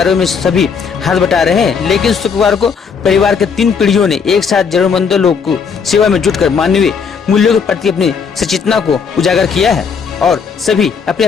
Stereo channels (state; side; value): quieter; right; 6.1 dB